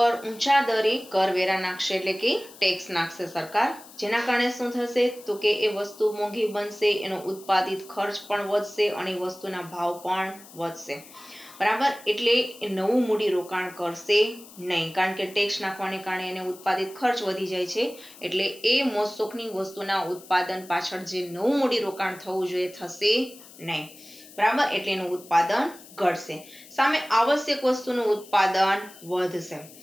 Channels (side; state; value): left; noise; hiss, 20 dB below the sound